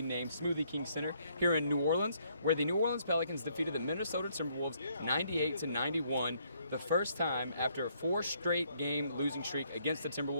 named Smoothie King Center here in New Orleans, where the New Orleans Pelicans defeated the Minnesota Timberwolves 98-91, the first time after a 4 straight game losing streak against the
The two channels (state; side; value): inverted; both; correlation -0.69